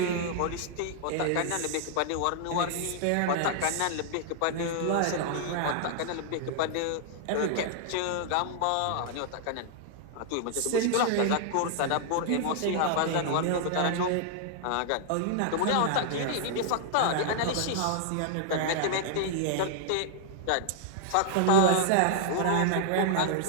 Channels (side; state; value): both; different; correlation -0.01